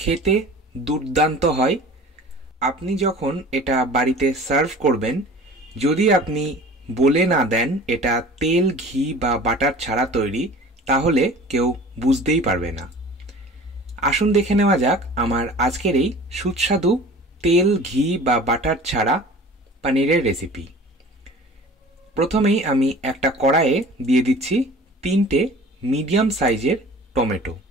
দুর্দান্ত হয়। আপনি যখন এটা বাড়িতে সার্ভ করবেন, যদি আপনি বলে না দেন এটা তেল, ঘি বা বাটার ছাড়া তৈরি, তাহলে কেউ বুঝতেই পারবে না। আসুন দেখে নেওয়া যাক আমার আজকের এই সুস্বাদু তেল, ঘি বা বাটার ছাড়া পনিরের রেসিপি। প্রথমেই আমি একটা কড়াইয়ে দিয়ে দিচ্ছি 3টে মিডিয়াম সাইজের টমেটো।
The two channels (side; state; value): both; normal; correlation 0.42